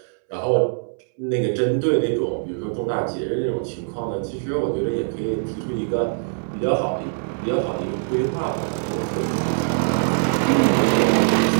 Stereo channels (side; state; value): left; silent; 64 dB below the other